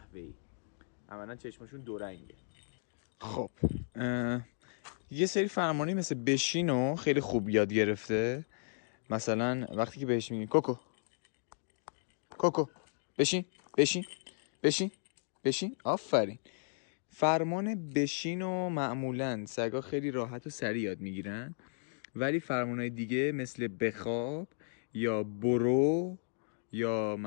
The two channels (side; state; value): right; silent; digital silence